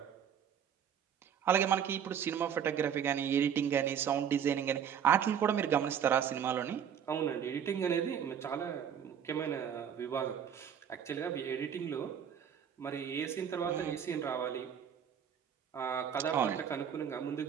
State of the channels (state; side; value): quieter; left; 8.4 dB